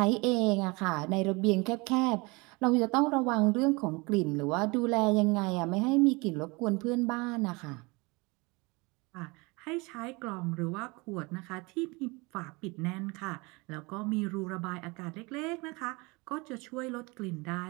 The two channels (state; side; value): quieter; left; 26.3 dB